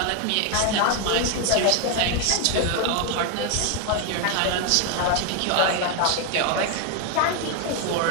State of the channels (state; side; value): different; both; correlation 0.01